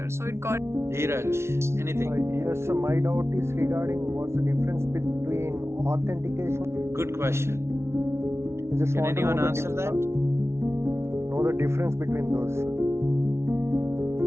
So it got. Dheeraj, anything? Yes, sir. My doubt is regarding what's the difference between authentication. Good question. I just Can want to anyone know answer that? Know the difference between those.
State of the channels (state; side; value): late; left; 0.13 ms